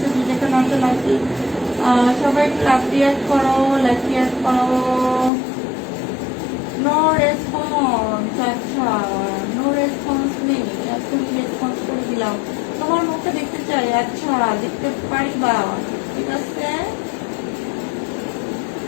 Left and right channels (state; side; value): drops out; right; at 5.3 s